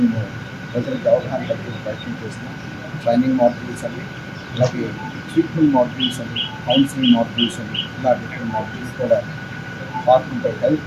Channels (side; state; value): both; identical; correlation 1.00